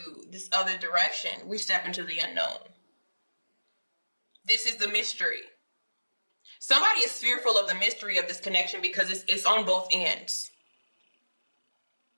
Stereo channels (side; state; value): both; inverted; correlation -1.00